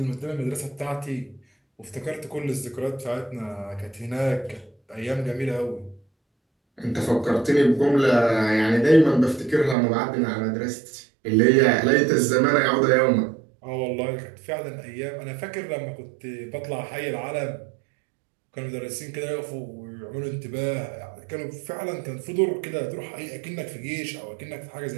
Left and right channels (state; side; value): drops out; left; at 9.8 s